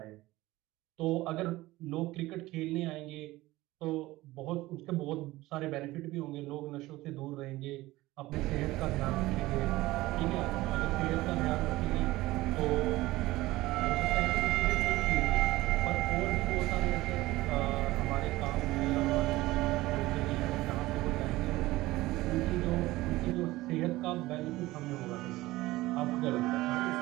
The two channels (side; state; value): left; quieter; 18.3 dB